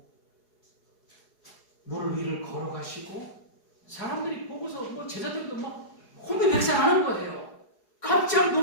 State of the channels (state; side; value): late; right; 4.7 ms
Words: 물 위를 걸어가시고 사람들이 보고서 뭐 제자들도 막 혼비백산하는 거예요. 깜짝